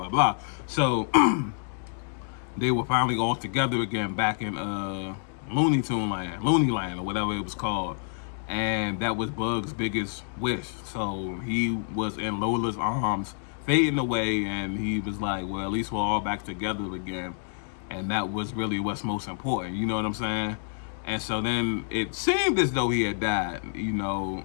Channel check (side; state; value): right; silent; digital silence